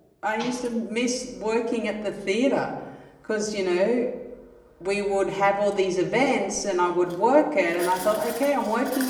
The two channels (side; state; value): both; identical; correlation 1.00